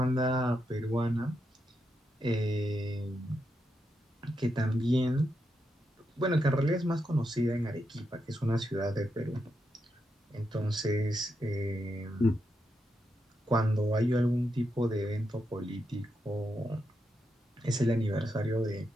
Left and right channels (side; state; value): both; normal; correlation 0.84